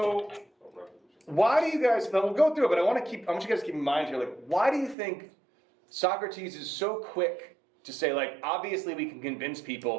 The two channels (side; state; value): left; drops out; at 5.0 s